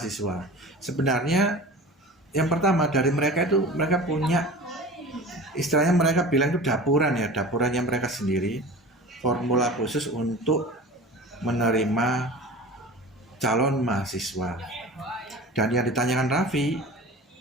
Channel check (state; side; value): normal; both; correlation 0.37